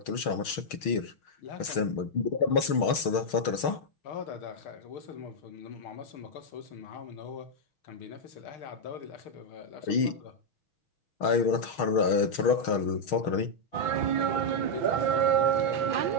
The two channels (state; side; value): late; right; 6.4 ms